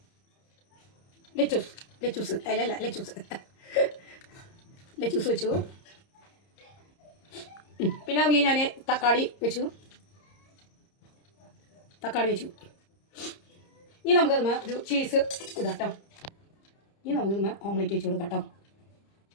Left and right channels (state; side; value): late; right; 30 ms